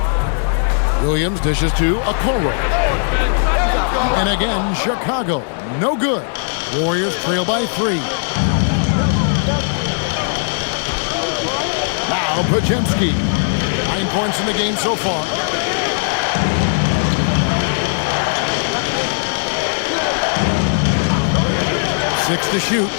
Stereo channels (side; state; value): right; silent; digital silence